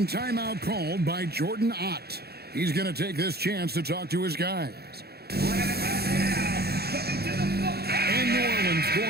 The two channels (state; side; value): late; left; 0.46 ms